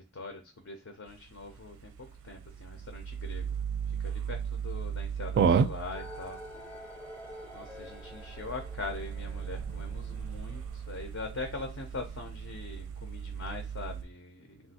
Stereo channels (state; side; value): quieter; left; 4.4 dB